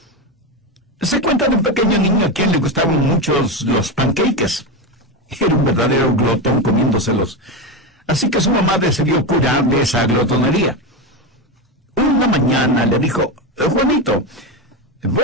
Se cuenta de un pequeño niño a quien le gustaban muchos los pancakes. Era un verdadero glotón comiéndoselos. Así que su mamá decidió curarle esa glotonería. Una mañana le dijo: Juanito,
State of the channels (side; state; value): both; normal; correlation 0.15